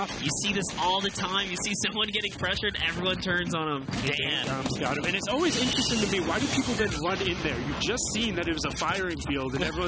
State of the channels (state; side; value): identical; both; correlation 1.00